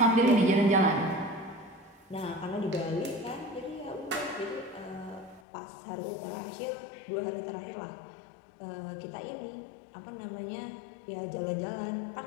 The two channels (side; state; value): right; drops out; at 5.4 s